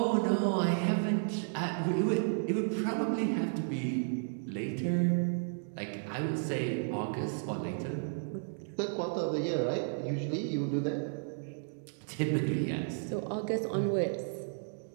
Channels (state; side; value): silent; left; digital silence